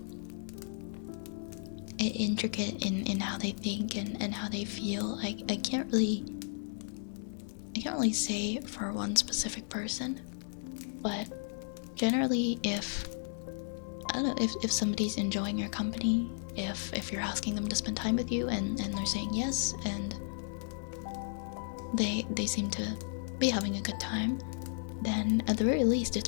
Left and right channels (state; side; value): silent; right; digital silence